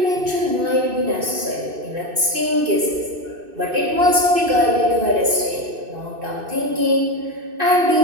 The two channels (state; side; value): late; left; 2.6 ms